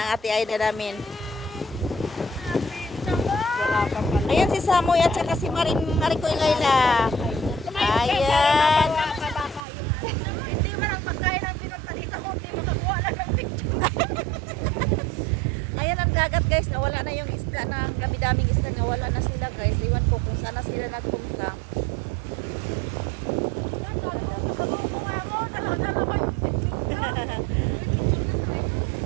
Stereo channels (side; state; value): left; drops out; at 9.6 s